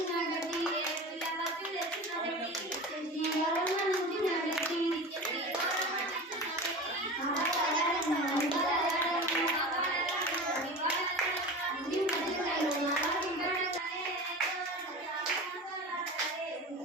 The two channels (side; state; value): both; normal; correlation 0.32